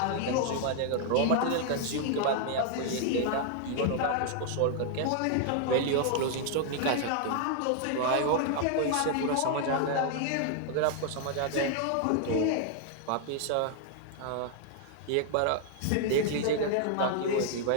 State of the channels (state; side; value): different; both; correlation 0.00